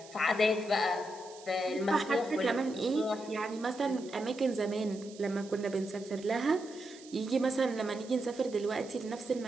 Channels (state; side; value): noise; right; hiss, 20 dB below the sound